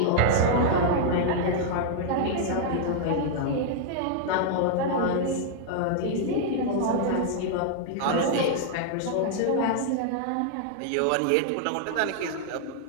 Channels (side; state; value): both; different; correlation -0.01